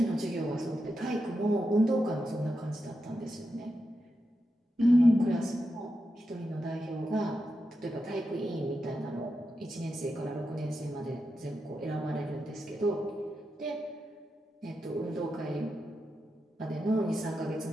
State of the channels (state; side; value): normal; both; correlation 0.88